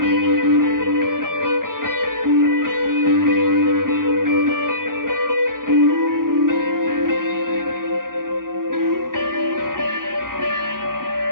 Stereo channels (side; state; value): left; late; 0.91 ms